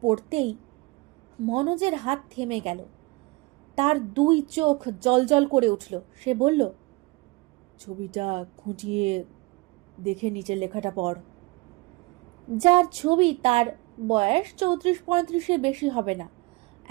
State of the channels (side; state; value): left; quieter; 23.8 dB